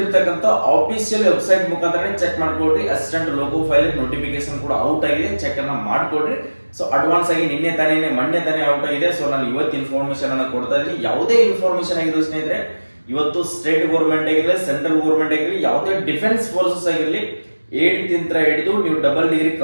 ಆಫಿಷಿಯಲ್ ವೆಬ್ಸೈಟ್ ಮುಖಾಂತರ ಚೆಕ್ ಮಾಡ್ಕೊಳ್ರಿ. ಅಸಿಸ್ಟೆಂಟ್ ಲೋಗೋ ಫೈಲ್ ನೋಟಿಫಿಕೇಶನ್ ಕೂಡ ಔಟ್ ಆಗಿದೆ, ಚೆಕ್ ಅನ್ನ ಮಾಡ್ಕೊಳ್ರಿ. ಸೊ ಅಡ್ವಾನ್ಸ್ ಆಗಿ ಮೊನ್ನೆ ತಾನೇ ಔಟ್ ಆಗಿದೆ. ಸೊ ನಾನು ಇವತ್ತು ಇನ್ಫಾರ್ಮೇಶನ್ ಅನ್ನ ಕೊಡ್ತಾ ಇದ್ದೀನಿ. ಯಾವುದೇ ಇನ್ಫಾರ್ಮೇಶನ್ ಆಗಿರೋ ಸ್ನೇಹಿತರೆ, ಇವತ್ತು ಸ್ಟೇಟ್ ಗೌರ್ಮೆಂಟ್ ಆಗಿರಲಿ, ಸೆಂಟ್ರಲ್ ಗೌರ್ಮೆಂಟ್ ಆಗಿರಲಿ, ಯಾವುದೇ ಡಿಫೆನ್ಸ್ ಫೋರ್ಸಸ್ ಆಗಿರಲಿ, 8th ಹಿಡಿದು ನೀವು ಡಬಲ್ ಡಿಗ್ರಿ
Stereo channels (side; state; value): both; inverted; correlation -1.00